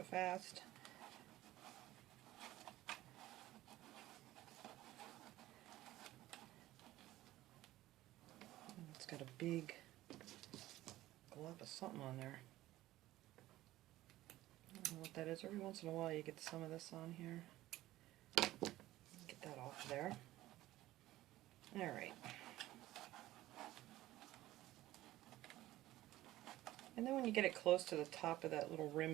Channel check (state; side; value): quieter; left; 15.9 dB